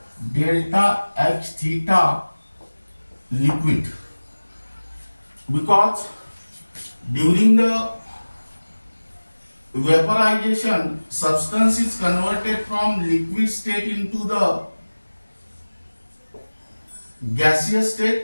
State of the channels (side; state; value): both; inverted; correlation -1.00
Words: delta H theta liquid, because during the vaporization substance is converted from liquid state into the gaseous